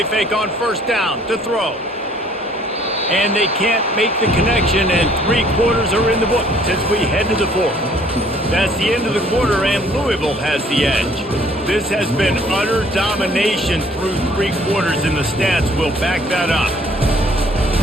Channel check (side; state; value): both; normal; correlation 0.59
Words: fake on first down to throw. And they can't make the connection, and 3 quarters are in the book as we head to the 4th. That's the end of the quarter, and Louisville has the edge. This has been utter domination through 3 quarters, and the stats will back that up.